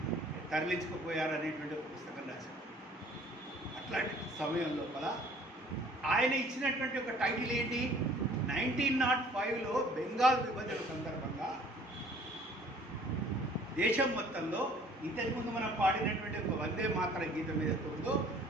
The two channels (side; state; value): both; normal; correlation 0.54